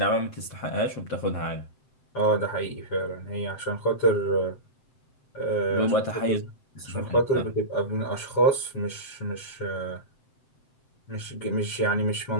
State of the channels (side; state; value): right; late; 7.7 ms